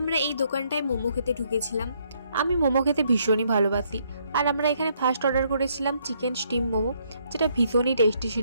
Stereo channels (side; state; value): both; inverted; correlation -0.71